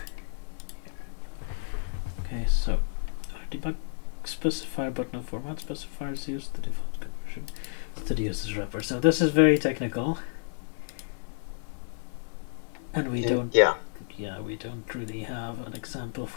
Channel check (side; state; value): right; silent; 56 dB below the other